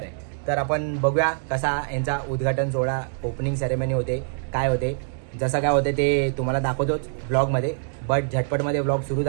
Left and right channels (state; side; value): silent; left; digital silence